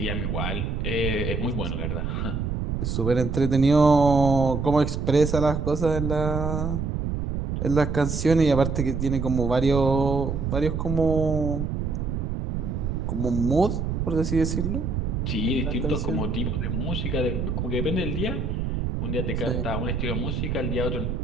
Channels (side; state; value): right; noise; rumble, 2 dB below the sound